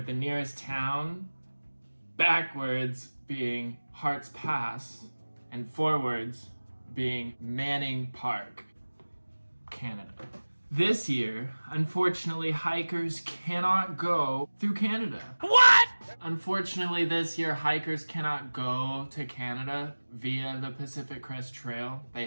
the nearest town backwards being Harts Pass and forwards being Manning Park, Canada. This year, unfortunately, hikers cannot go through Canada. What? Unfortunately, this year, hikers cannot go to Canada via the Pacific Crest Trail. They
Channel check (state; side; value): inverted; both; correlation -1.00